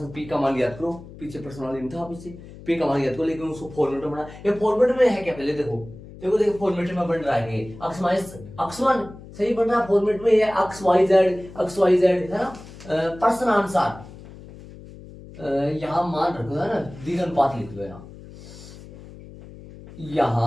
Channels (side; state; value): left; noise; hum, 17 dB below the sound